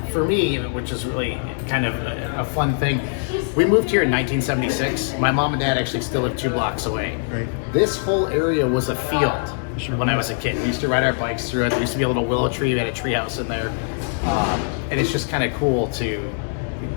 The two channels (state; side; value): silent; right; 64 dB below the other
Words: for me, which is really kind of a fun thing, we moved here in 1976. My mom and dad actually still live 2 blocks away. Right. This whole area was a field Sure. when I was a kid. We used to ride our bikes through it. There used to be a little willow tree. We had a tree house in there. And it's just kind of cool to